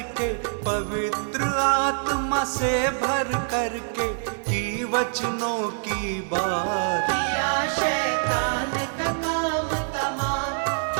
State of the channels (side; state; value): left; silent; digital silence